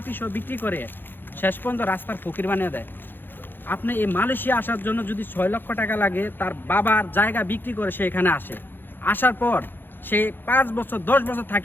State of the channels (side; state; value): right; late; 0.097 ms